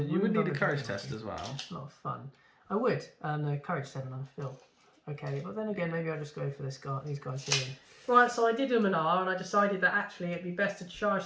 would need a courage test as well. It's a lot of fun. I would. No, courage 7 on Phil. Okay, but then again, maybe I'll just go for these guys here. Right, so I did Luminar, and I decided that actually it'd be best to charge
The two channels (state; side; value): identical; both; correlation 1.00